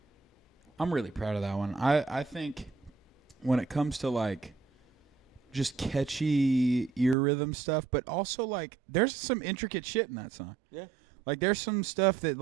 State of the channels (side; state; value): left; drops out; at 7.2 s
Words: I'm really proud of that one. I think when it comes to like just catchy ear rhythm stuff, but also like there's some intricate shit in that song. Yeah. Like there's some stuff that